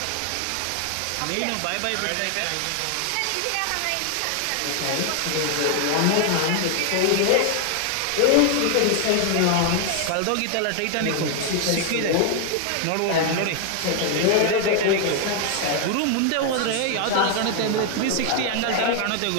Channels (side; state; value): both; different; correlation 0.00